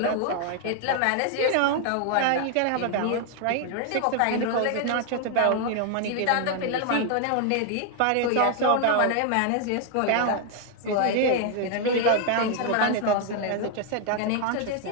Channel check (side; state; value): both; different; correlation 0.00